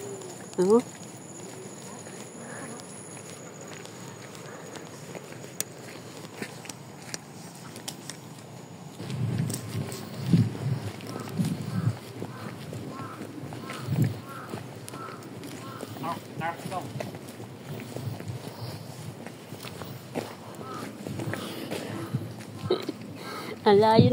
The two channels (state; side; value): identical; both; correlation 1.00